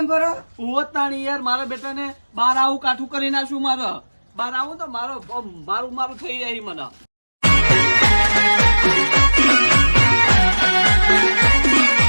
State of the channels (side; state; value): both; inverted; correlation -1.00